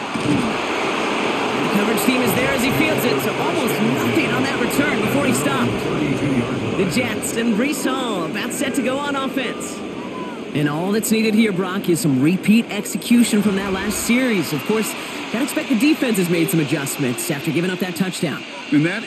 The coverage team is there as he fields it, so almost nothing on that return before he stopped. The Jets and Breece Hall about set to go on offense. And all that's needed here, Brock, is some repeat execution from that last series. Of course, I expect the defense has made some adjustments after giving up that touchdown. And that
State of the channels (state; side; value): identical; both; correlation 1.00